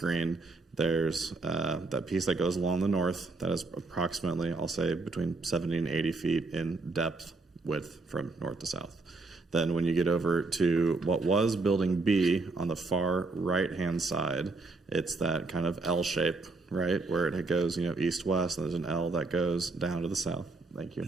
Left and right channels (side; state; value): left; quieter; 3.6 dB